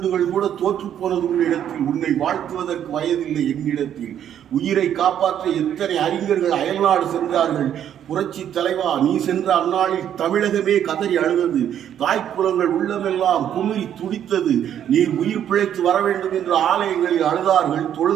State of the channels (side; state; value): left; quieter; 10.0 dB